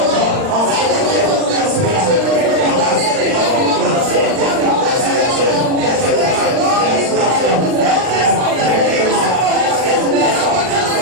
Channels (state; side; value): late; left; 39 ms